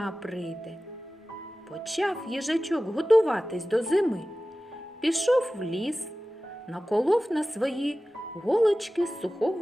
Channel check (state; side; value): normal; both; correlation 0.96